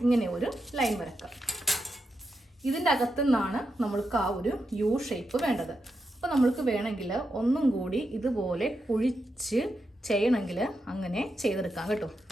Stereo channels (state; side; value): normal; both; correlation 0.86